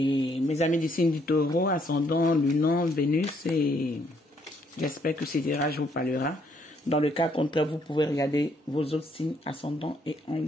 mes amis du signe du taureau, ascendant, lunan, Vénus, et j'espère que ce tirage vous parlera. Dans le cas contraire, vous pouvez regarder vos autres signes ascendants et en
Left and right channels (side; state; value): both; normal; correlation 0.69